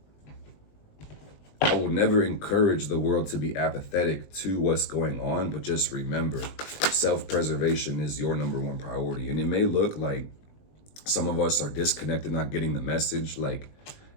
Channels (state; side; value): late; right; 20 ms